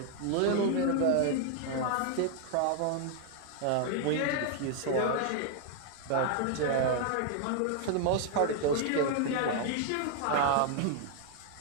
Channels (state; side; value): different; both; correlation 0.00